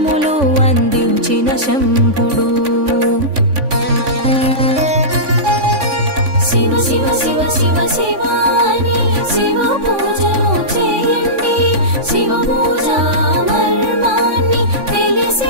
అందించిన శంభుడు. శివ శివ శివ శివ శివ అని శివ పూజను చేయండి. శివ పూజ మర్మాన్ని తెలిసి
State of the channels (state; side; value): late; left; 3.5 ms